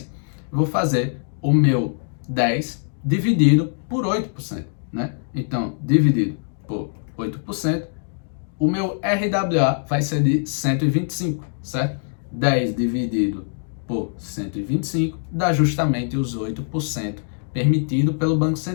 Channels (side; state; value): right; silent; digital silence